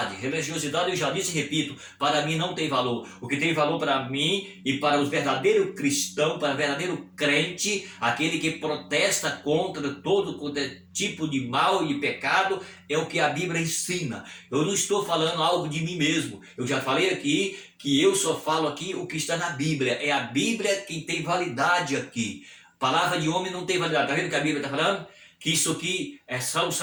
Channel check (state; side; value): identical; both; correlation 1.00